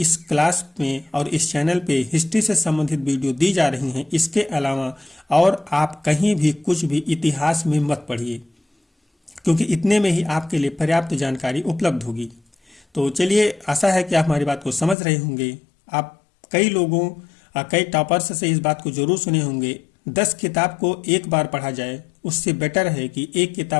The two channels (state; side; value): drops out; right; at 15.0 s